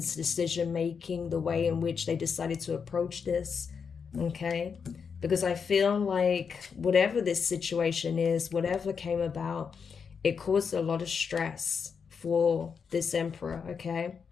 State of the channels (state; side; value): quieter; right; 6.2 dB